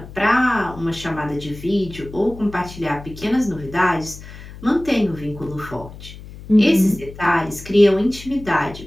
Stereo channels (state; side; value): noise; left; hum, 15 dB below the sound